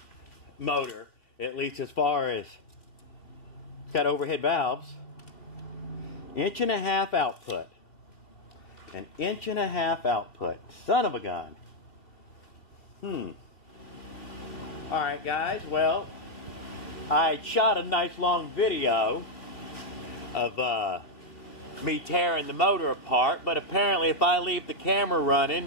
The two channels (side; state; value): right; late; 2.7 ms